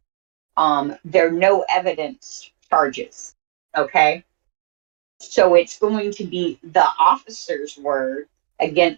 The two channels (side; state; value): left; silent; digital silence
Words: They're no evidence charges. Okay. So it's going to be the officer's word